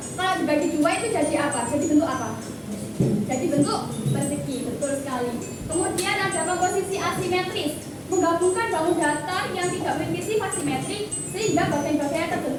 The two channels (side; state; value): both; identical; correlation 1.00